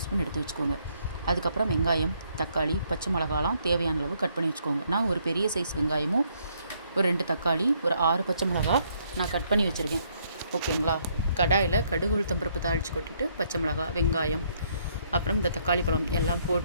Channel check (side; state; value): both; inverted; correlation -0.70